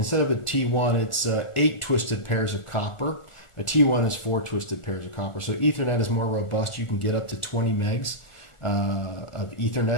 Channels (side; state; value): right; late; 1.4 ms